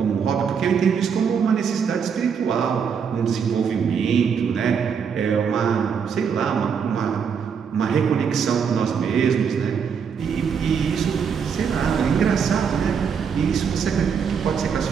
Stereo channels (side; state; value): left; quieter; 6.7 dB